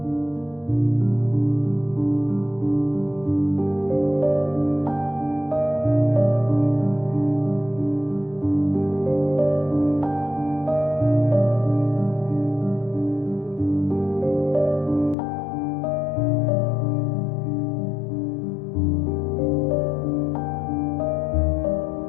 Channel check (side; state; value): right; drops out; at 15.2 s